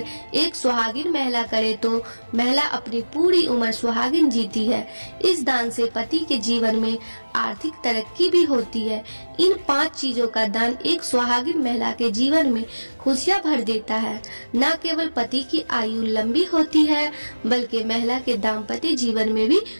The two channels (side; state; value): both; inverted; correlation -1.00